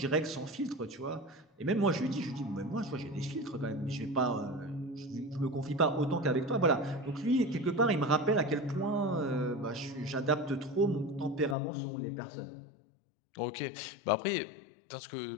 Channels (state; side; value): drops out; right; at 11.6 s